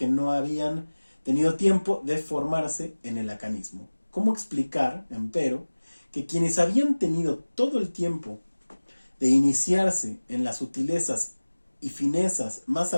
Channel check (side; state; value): both; inverted; correlation -1.00